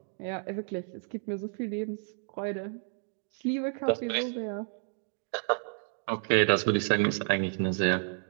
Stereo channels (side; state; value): left; silent; 57 dB below the other